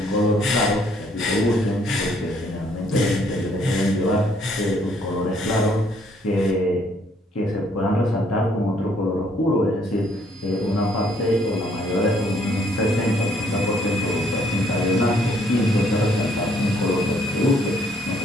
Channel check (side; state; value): both; normal; correlation 0.66